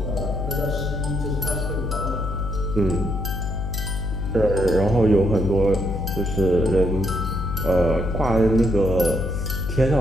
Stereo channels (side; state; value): left; noise; hum, 3 dB below the sound